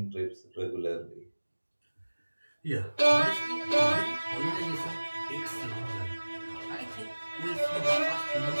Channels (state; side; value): inverted; both; correlation -1.00